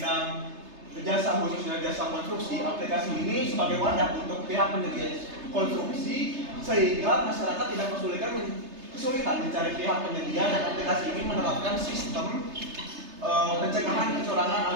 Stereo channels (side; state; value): left; late; 3.3 ms